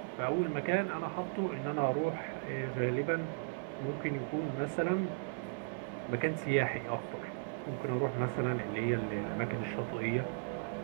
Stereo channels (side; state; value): left; silent; digital silence